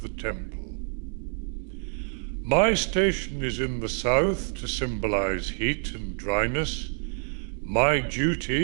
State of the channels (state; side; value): silent; left; 60 dB below the other